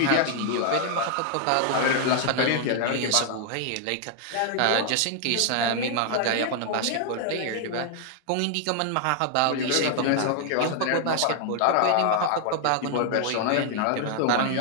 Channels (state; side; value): different; both; correlation 0.00